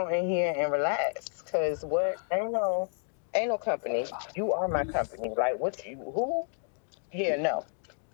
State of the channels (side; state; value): right; silent; digital silence